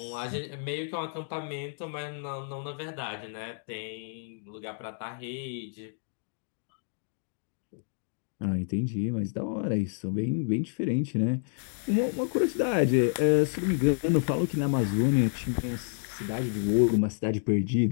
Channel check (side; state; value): right; silent; digital silence